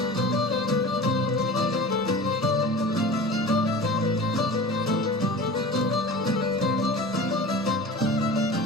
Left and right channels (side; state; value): both; normal; correlation 0.37